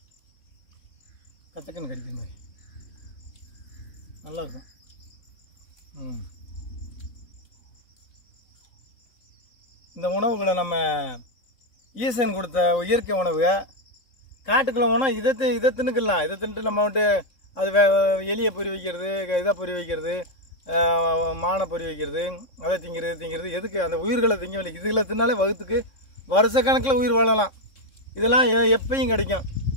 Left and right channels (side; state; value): right; late; 3.6 ms